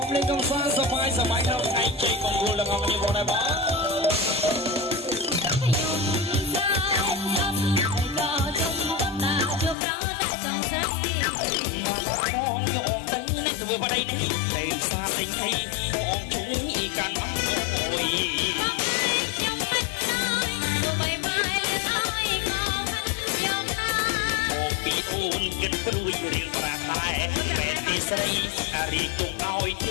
លេងកំសាន្តសប្បាយក្នុងថ្ងៃជ័យមង្គលទាំងអស់គ្នាបងដែរបងធ្វើបដៃនេះតែសាតែងឲ្យបងជួយកាន់អស់អូយខ្ញុំមិនទៅបាយបាយលើឲ្យក៏ខ្ញុំណាបងពីអូនគិតព្រួយរៀងប្រាតែតែទីស្រីរីកទុកឲ្យទ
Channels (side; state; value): right; drops out; at 9.8 s